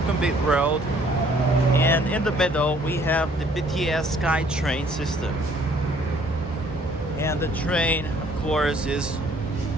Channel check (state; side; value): normal; both; correlation 0.60